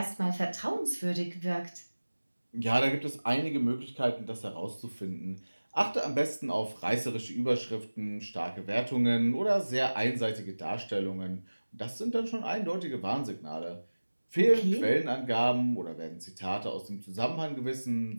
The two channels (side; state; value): both; inverted; correlation -1.00